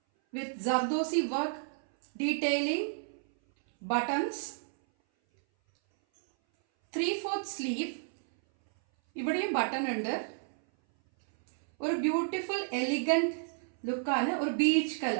വിത്ത് zardozi work detailing, buttons, 3/4 sleeve. ഇവിടെയും ബട്ടൺ ഉണ്ട്. ഒരു ബ്യൂട്ടിഫുൾ എലിഗന്റ് ലുക്കാണ്. ഒരു beach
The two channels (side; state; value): left; silent; 57 dB below the other